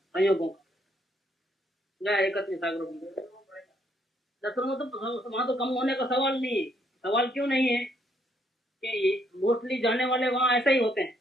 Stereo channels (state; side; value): normal; both; correlation 0.71